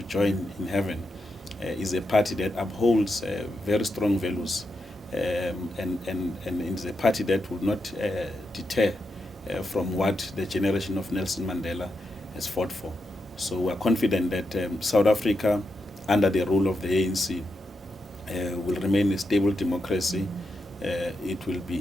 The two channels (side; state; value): both; normal; correlation 0.85